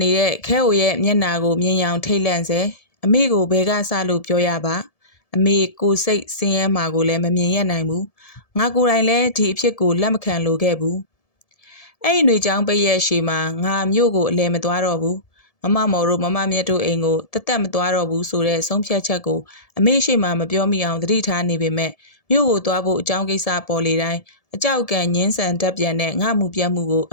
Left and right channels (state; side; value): late; right; 1.7 ms